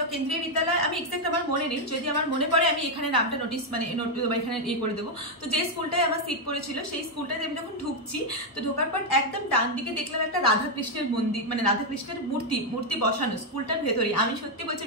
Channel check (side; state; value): both; normal; correlation 0.02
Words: কেন্দ্রীয় বিদ্যালয় আমি এক্সাক্ট আমার মনে নেই, যদি আমার মনে পড়ে আমি এখানে নামটা নোটিস মানে এখানে করে দেবো। তো যে স্কুলটায় আমার সিট পড়েছিল সেই স্কুলটাতে আমি যখন ঢুকছি, তো ঢোকার পর একদম ডান দিকে দেখলাম একটা রাধাকৃষ্ণের মন্দির, মানে রাধাকৃষ্ণের মূর্তি বসানো স্কুলটার ভেতরে। আমি সত্যি বলছি